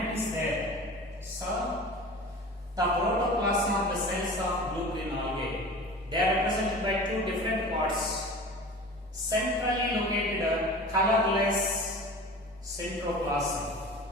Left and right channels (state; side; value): normal; both; correlation 0.38